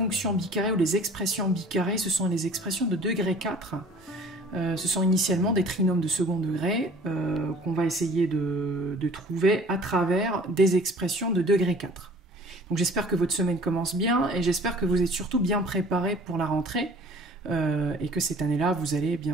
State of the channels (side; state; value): both; normal; correlation 0.49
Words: bicarrées ou les expressions bicarrées, ce sont les expressions de degré 4. Ce sont initialement des trinômes de second degré qu'on va essayer de trouver à travers des expressions de degré 4. Donc j'espère que votre semaine commence bien et j'espère que vous êtes surtout bien préparés pour la rentrée et que cette année-là vous allez